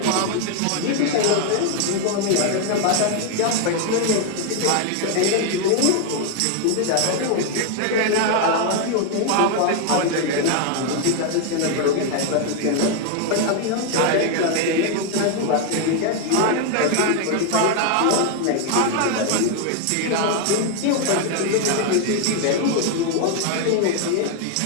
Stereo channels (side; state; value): both; different; correlation 0.00